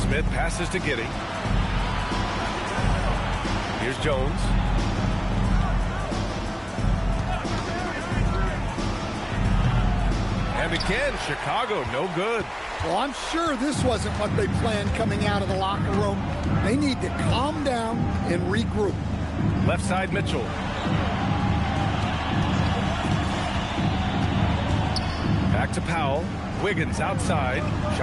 Smith passes to Giddey. Here's Jones. And again, Chicago, no good. Well, I'm sure this wasn't what they planned coming out of the locker room. They need to calm down and regroup. Left side, Mitchell. Back to Powell. Wiggins outside.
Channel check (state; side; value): identical; both; correlation 1.00